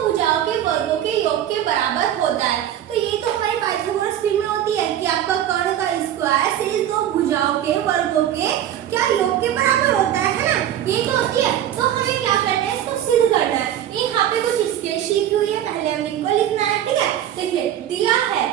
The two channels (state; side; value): quieter; left; 11.1 dB